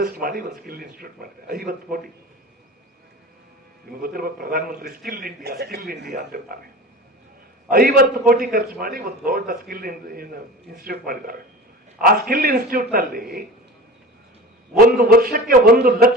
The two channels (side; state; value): both; normal; correlation 0.35